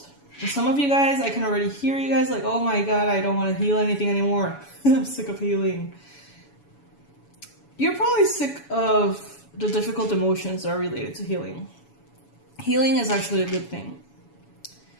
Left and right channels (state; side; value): late; right; 7.1 ms